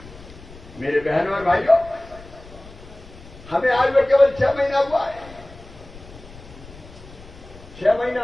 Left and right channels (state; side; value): noise; left; rumble, 19 dB below the sound